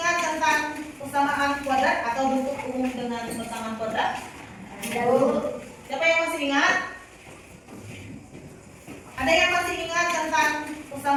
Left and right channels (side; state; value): both; identical; correlation 1.00